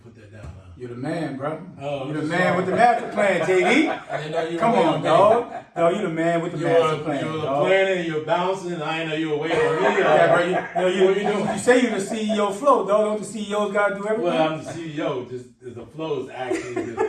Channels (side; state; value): both; identical; correlation 1.00